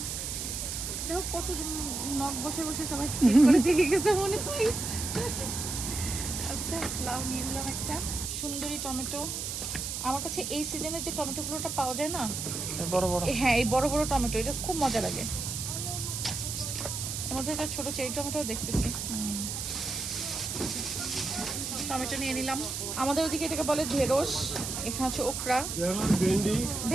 দেখো কত নখ বসে বসে সবাই চেক করে দিয়ে গেছে মনে হয়। আচ্ছা, লাউ নিয়ে নিলাম একটা। সুন্দরী টমেটো। আমার কাছে এই সিজনে যে টমেটোগুলোটা পাওয়া যায় না, বড় বড়। হ্যাঁ, এই বড় বড় টমেটো, এটা খুব মজা লাগে। এর মধ্যে একটা ছোট চেরি টমেটো দেখতেছি। টমেটো নিয়ে নিলাম। আমাদের ওদিকে এটাকে বলে ঢেঁড়স, এখানে হচ্ছে ওকরা, ভেন্ডি।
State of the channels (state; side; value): noise; right; hiss, 4 dB below the sound